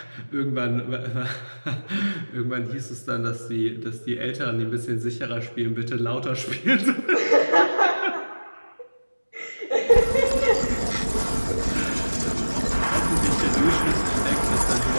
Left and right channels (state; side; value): inverted; both; correlation -1.00